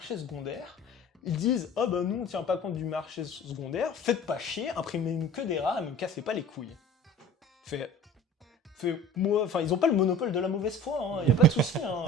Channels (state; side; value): normal; both; correlation 0.42